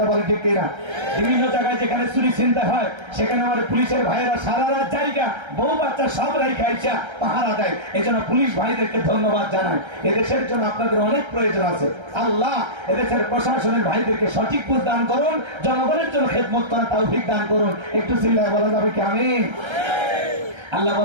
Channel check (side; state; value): left; late; 1.3 ms